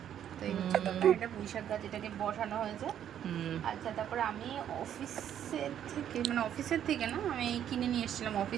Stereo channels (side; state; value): left; quieter; 10.0 dB